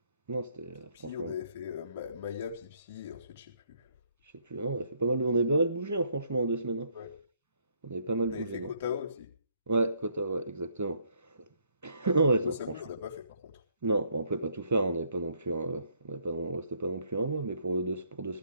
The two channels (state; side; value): inverted; both; correlation -0.68